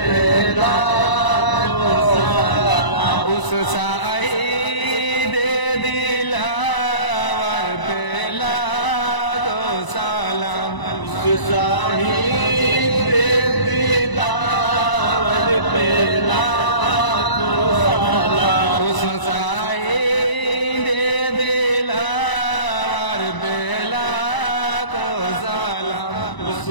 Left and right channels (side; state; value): right; late; 1.0 ms